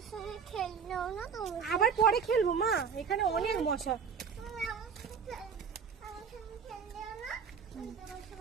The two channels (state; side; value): quieter; left; 6.4 dB